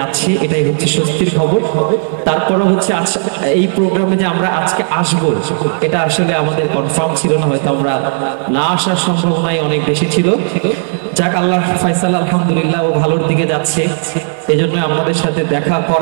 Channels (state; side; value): silent; left; digital silence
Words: এটাই হচ্ছে স্বস্তির খবর। তারপরে হচ্ছে এই প্রোগ্রামে যে আমরা আজকে আসব এটা আসলে আমাদের কনফার্ম ছিল না, হয়তো আমরা না আসার সম্ভাবনাই অনেক বেশি ছিল। যাক, আল্লাহ ফায়সাল, আলহামদুলিল্লাহ ও ভালোর দিকে যাচ্ছে, এই জন্য আমাদের সাথে দেখা